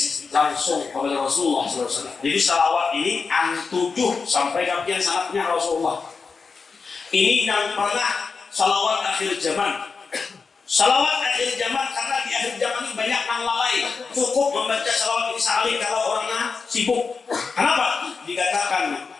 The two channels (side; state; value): right; quieter; 4.9 dB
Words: langsung kepada Rasulullah SAW. Jadi salawat ini 7 sampai kajian sanatnya Rasulullah. Ini yang pernah salawat akhir zaman. Salawat akhir zaman karena di akhir zaman ini banyak yang lalai. Cukup membaca salawat ini sekali kalau orangnya sibuk. Kenapa? Dikatakan